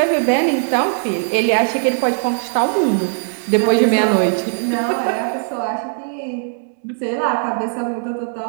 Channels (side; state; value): left; silent; digital silence